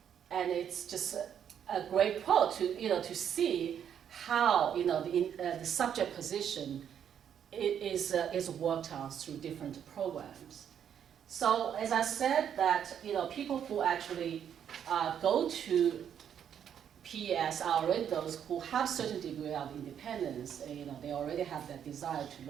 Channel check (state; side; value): quieter; left; 8.8 dB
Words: And it's just a great quote to see how the subject position is worked on through different programs. So as I said, that people who actually go to PES are already those who have certain degree of independence. They already have that desire to